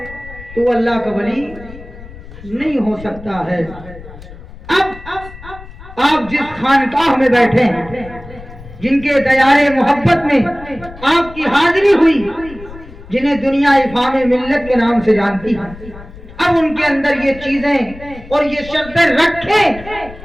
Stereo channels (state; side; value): noise; left; rumble, 17 dB below the sound